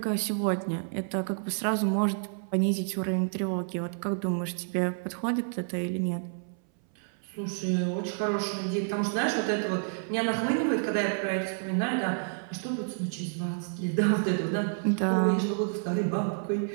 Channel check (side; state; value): left; silent; 58 dB below the other